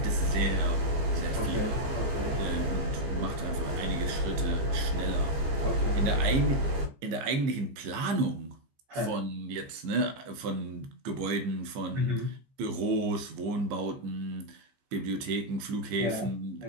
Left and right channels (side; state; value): left; late; 15 ms